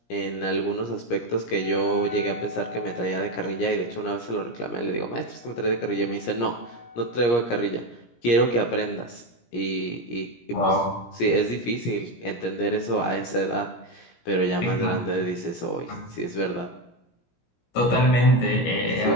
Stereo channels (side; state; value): right; late; 17 ms